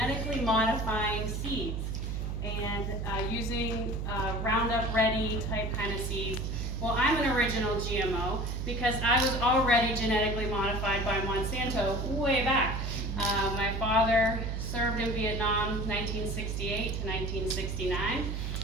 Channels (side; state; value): right; noise; hum, 3 dB below the sound